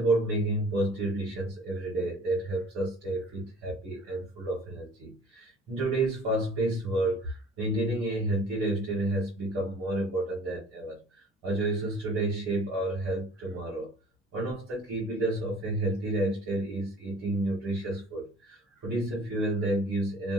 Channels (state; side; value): normal; both; correlation 0.50